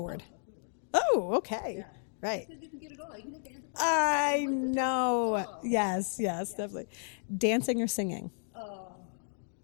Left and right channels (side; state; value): right; silent; 56 dB below the other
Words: Oh, okay. Yeah. Right. Because you can get it all. You can get the antipasto. I know. Yes, definitely. Dancing or singing? Oh.